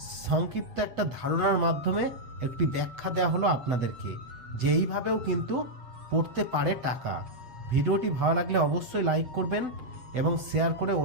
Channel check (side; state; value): left; late; 7.9 ms